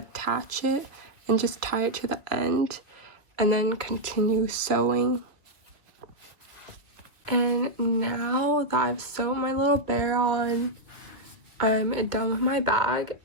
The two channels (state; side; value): late; left; 1.9 ms